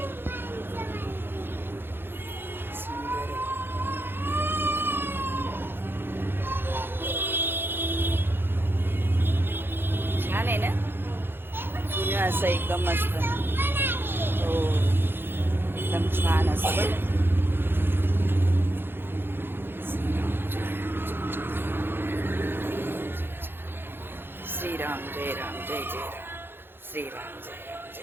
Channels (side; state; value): left; late; 0.10 ms